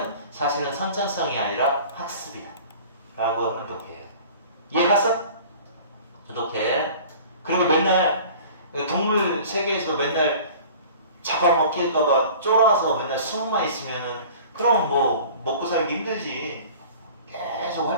사실은 선천성이 아니라 학습이다. 라고 하면 독해. 이해 갔어? 독해. 그리고 맨날 동물 세계에서 맨날 잡아먹힐까봐 쫄아서 맨날 숨어만 있으면은 그럼 뭐 먹고 살기 힘들지. 계속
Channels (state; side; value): inverted; both; correlation -0.44